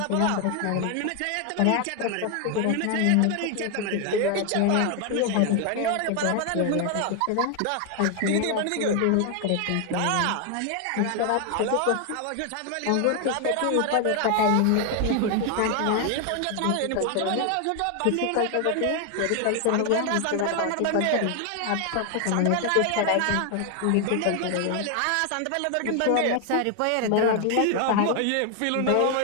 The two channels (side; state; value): both; different; correlation 0.00